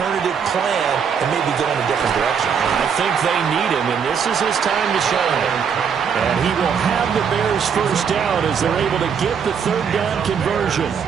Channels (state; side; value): quieter; left; 6.9 dB